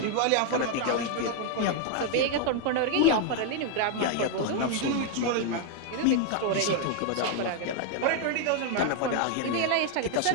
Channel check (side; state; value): both; different; correlation 0.00